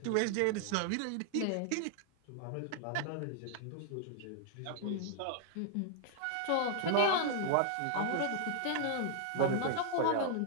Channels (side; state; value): both; different; correlation -0.01